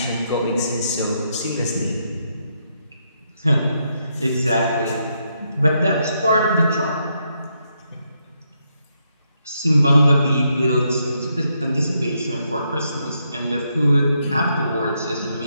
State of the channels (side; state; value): both; inverted; correlation -0.79